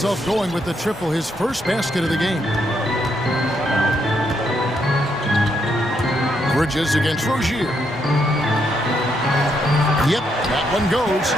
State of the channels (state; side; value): normal; both; correlation 0.77